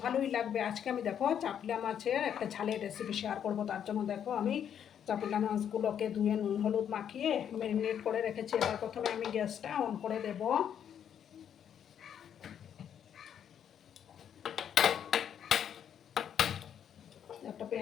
ভালোই লাগবে। আজকে আমি দেখো চাপলা মাছের একটা ঝালের রেসিপি শেয়ার করব। তার জন্য দেখো আমি চাপলা মাছগুলোকে ধুয়ে নুন হলুদ মাখিয়ে ম্যারিনেট করে রেখেছি। এবার প্রথমে আমি গ্যাসটা অন করে দেব। একটা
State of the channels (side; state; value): right; quieter; 8.9 dB